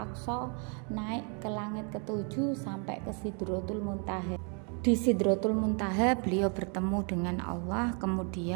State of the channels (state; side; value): quieter; left; 37.8 dB